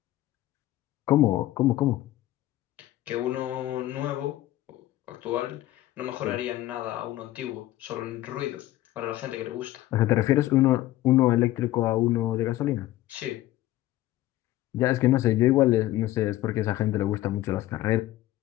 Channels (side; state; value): right; quieter; 15.5 dB